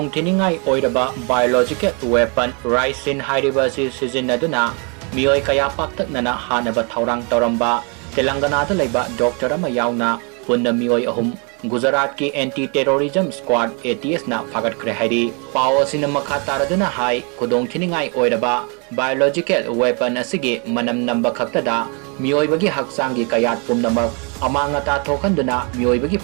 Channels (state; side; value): quieter; left; 35.1 dB